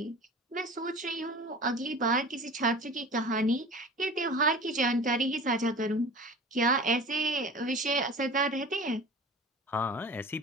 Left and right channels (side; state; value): both; normal; correlation 0.39